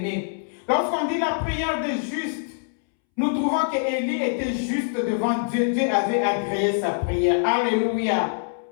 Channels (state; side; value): silent; right; 63 dB below the other